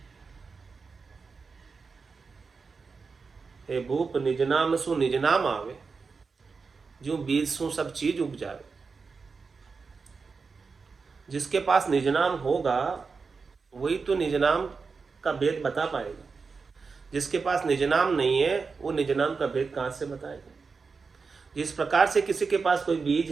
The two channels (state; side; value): quieter; left; 4.8 dB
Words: हे भूप निज नाम सु निज नाम आवे, जो बीज सु सब चीज उग जावे। जिसके पास निज नाम होगा वही तो निज नाम का भेद बता पाएगा। जिसके पास निज नाम नहीं है वो निज नाम का भेद कहां से बताएगा? जिस प्रकार से किसी के पास कोई बीज